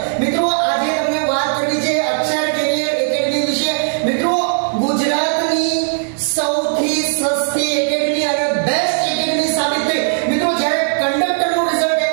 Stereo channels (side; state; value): left; silent; digital silence